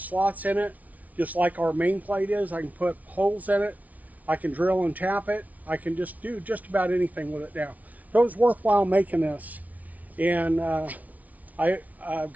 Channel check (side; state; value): left; late; 0.072 ms